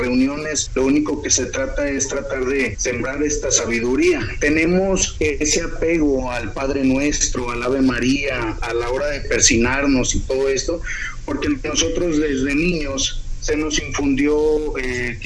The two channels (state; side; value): identical; both; correlation 1.00